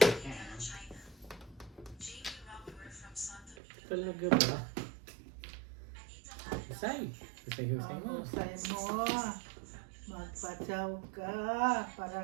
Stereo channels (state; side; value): drops out; left; at 3.6 s